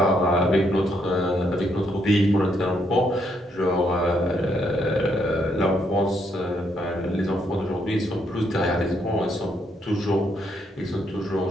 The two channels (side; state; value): both; normal; correlation 0.75